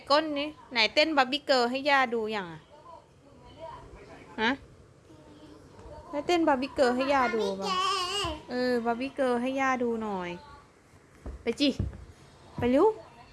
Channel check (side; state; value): both; identical; correlation 1.00